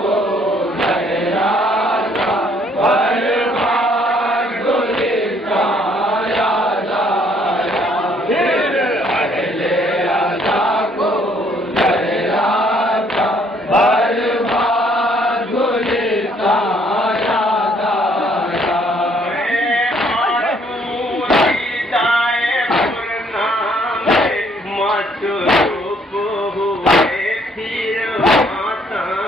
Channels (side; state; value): both; normal; correlation 0.65